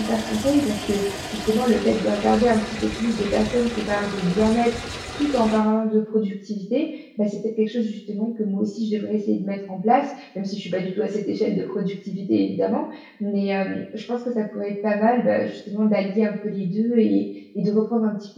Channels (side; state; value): both; identical; correlation 1.00